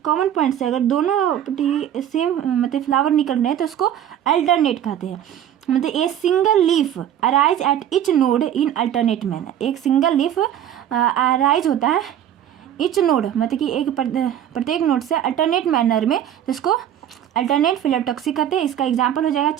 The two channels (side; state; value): left; quieter; 10.4 dB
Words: कॉमन पॉइंट से अगर दोनों सेम मतलब फ्लावर निकल रहे हैं तो उसको अल्टरनेट कहते हैं। मतलब a single leaf arise at each node in alternate manner, एक सिंगल लीफ अराइज होता है इच नोड, मतलब कि एक प्रत्येक नोड से अल्टरनेट मैनर में, तो इसको अल्टरनेट फाइलोटॉक्सी कहते हैं। इसका एग्जांपल हो जाएगा